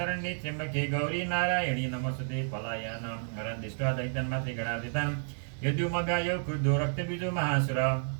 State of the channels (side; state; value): left; silent; digital silence